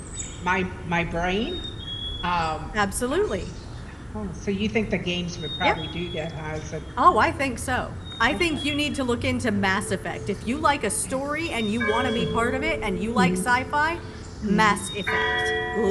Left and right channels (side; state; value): both; identical; correlation 1.00